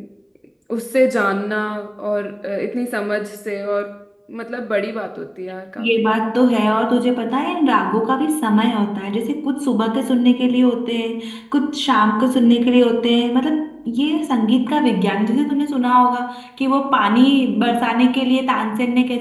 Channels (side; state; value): both; identical; correlation 1.00